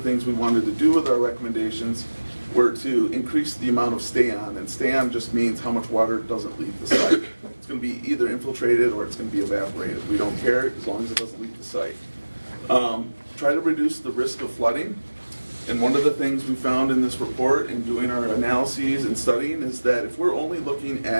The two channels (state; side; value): inverted; both; correlation -1.00